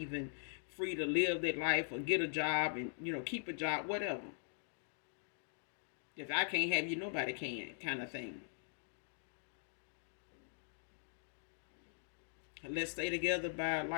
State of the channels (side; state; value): right; silent; digital silence